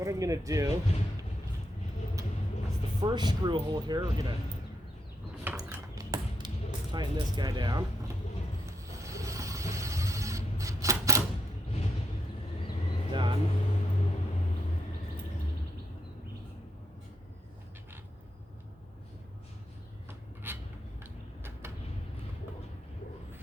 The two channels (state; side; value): normal; both; correlation 0.79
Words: I'm going to do is the first screw hole here, we're going to tighten this guy down. Done.